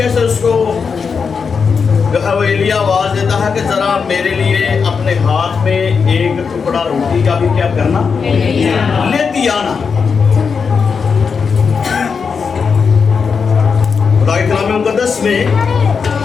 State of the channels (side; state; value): right; quieter; 5.7 dB